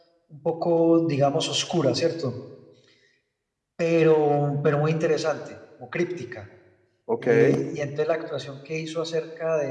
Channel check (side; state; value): both; identical; correlation 1.00